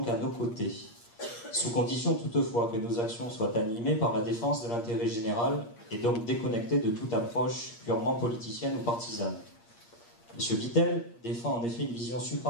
à nos côtés, sous condition toutefois que nos actions soient animées par la défense de l'intérêt général et donc déconnectées de toute approche purement politicienne ou partisane. M. Vittel défend en effet une vision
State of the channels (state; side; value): late; right; 8.6 ms